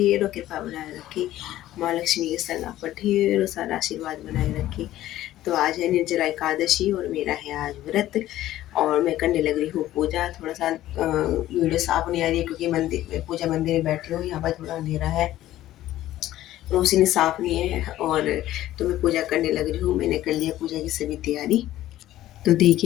कृपा बनाए रखे, माँ लक्ष्मी के संग आप पर ढेरों सारा आशीर्वाद बनाए रखे। तो आज है निर्जला एकादशी और मेरा है आज व्रत, और मैं करने लग रही हूँ पूजा। थोड़ा सा वीडियो साफ नहीं आ रही है क्योंकि मंदिर में, पूजा मंदिर में बैठी हूँ, यहाँ पर थोड़ा अंधेरा है, रोशनी साफ नहीं है। और तो मैं पूजा करने लग रही हूँ। मैंने कर लिया पूजा की सभी तैयारी। तो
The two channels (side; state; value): right; quieter; 14.2 dB